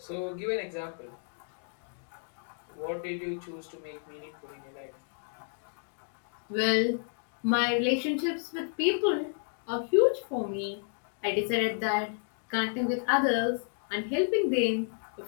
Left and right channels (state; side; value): silent; right; 57 dB below the other